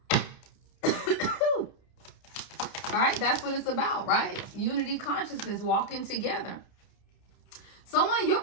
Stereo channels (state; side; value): late; right; 30 ms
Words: All right, that's what it's about, right? Unity consciousness, walking together. Someone, your